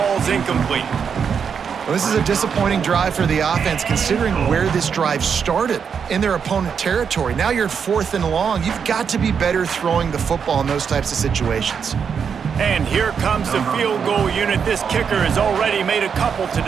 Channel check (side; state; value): left; quieter; 6.8 dB